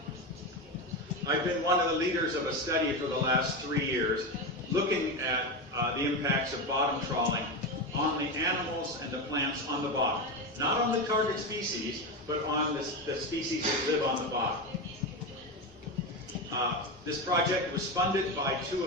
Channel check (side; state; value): both; normal; correlation 0.17